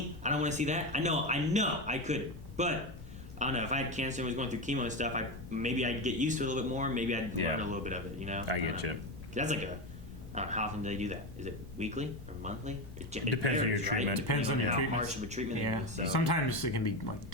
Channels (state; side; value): noise; left; rumble, 16 dB below the sound